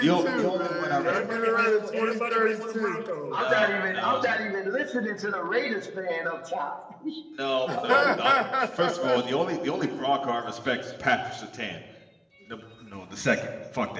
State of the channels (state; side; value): identical; both; correlation 1.00